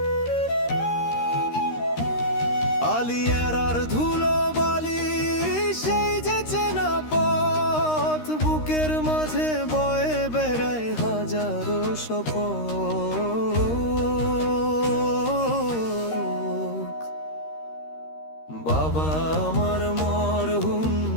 আলিয়ারার ধুলো বালি সেই যে চেনা পথ, বুকের মাঝে বয়ে বেড়ায় হাজারো শপথ। বাবা আমার মরহুম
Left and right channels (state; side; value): late; right; 13 ms